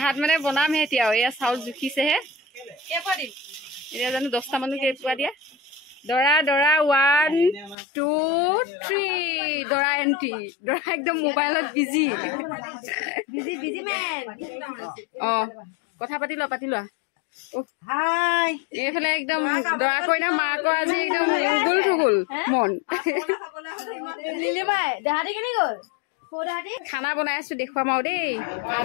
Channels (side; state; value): right; drops out; at 7.8 s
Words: মানে বনামহে এতিয়া এয়া চাউল জুখিছেহে এতিয়া জানো 10টা মানুহ কেইপুৱা দিয়া দৰা দৰা 1 2 3 দৰা এণ্ট্ৰি দৰা একদম মোবাইলত বিজি কথা পাতি লোৱা এইফালে একদম দৰা কইনা মাকৰ আজি একদম উগুল থুগুল মন খানা বনাই আছো দেখুৱাম আৰু দেই